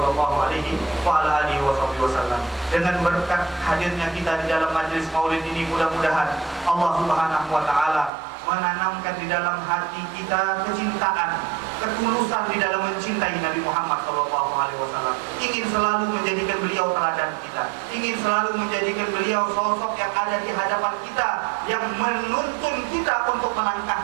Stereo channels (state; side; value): drops out; left; at 8.1 s